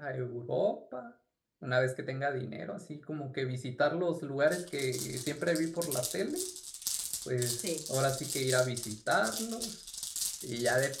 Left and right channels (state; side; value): identical; both; correlation 1.00